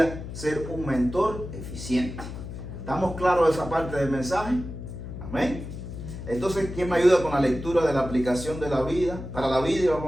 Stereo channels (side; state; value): left; noise; hum, 9 dB below the sound